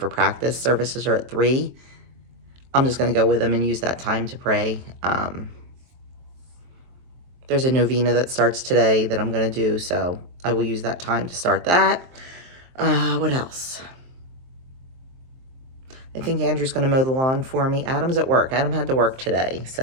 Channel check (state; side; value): late; left; 23 ms